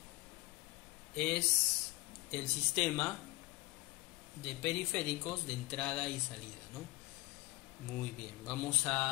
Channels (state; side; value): quieter; right; 21.6 dB